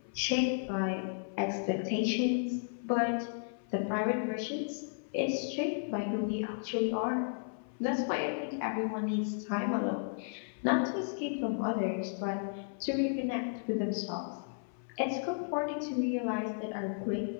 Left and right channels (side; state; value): right; silent; 55 dB below the other